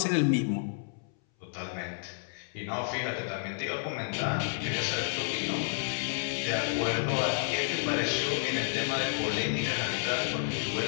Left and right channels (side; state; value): right; silent; 57 dB below the other